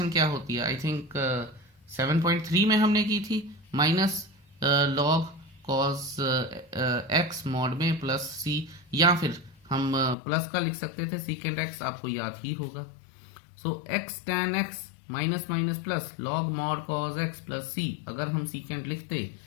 क्या होती है, आई थिंक 7.3 में हमने की थी, minus log cos x mod में प्लस c, या फिर हम प्लस का लिख सकते थे सीकेंड x, आपको याद ही होगा। सो x tan x minus minus plus log mod cos x plus c, अगर हम सीकेंड लिखते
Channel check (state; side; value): drops out; right; at 10.2 s